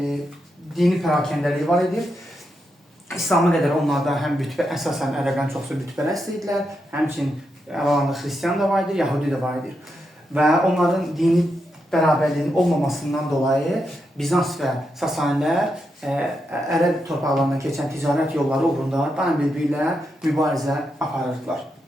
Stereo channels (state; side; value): normal; both; correlation 0.84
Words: dini pərakəndəliyi var idi. İslam'a qədər onlarda həm əsasən ərəblərin çoxsu bütpərəst idilər, həmçinin aralarında xristiyan da var idi, yahudi də var idi. Və onların dini bərabərliyin olmamasından dolayı Bizans və Sasanilər Ərəb torpaqlarından keçən ticarət yolları uğrunda daim bir-birilə mübarizə aparırdılar.